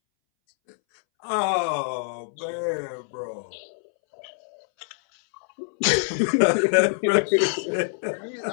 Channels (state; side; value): silent; right; 62 dB below the other